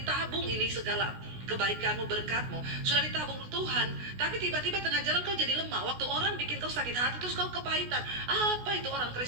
ini segala kebaikanmu, berkatmu sudah ditabung Tuhan, tapi tiba-tiba tengah jalan kau jadi lemah. Waktu orang bikin kau sakit hati terus kau kepahitan. Apa itu orang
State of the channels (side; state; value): left; late; 16 ms